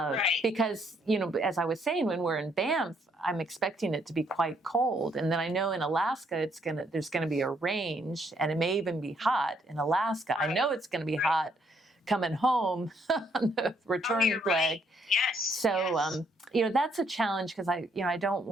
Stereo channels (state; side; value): normal; both; correlation 0.70